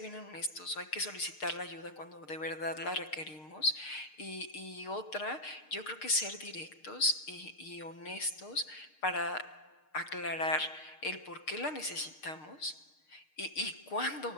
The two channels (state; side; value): late; right; 6.5 ms